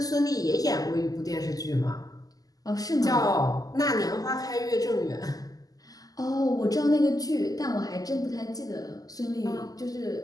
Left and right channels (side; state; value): right; late; 0.17 ms